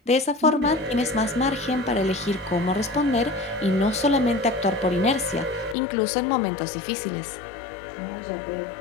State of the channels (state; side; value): drops out; right; at 5.8 s